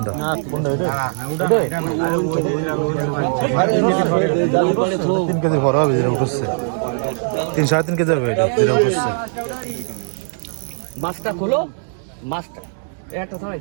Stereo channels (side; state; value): left; silent; digital silence